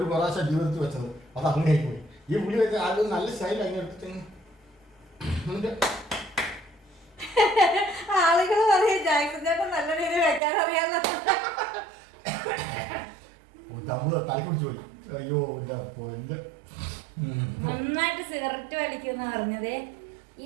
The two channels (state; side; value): drops out; left; at 10.4 s